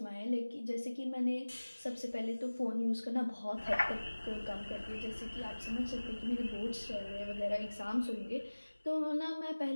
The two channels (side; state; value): both; inverted; correlation -1.00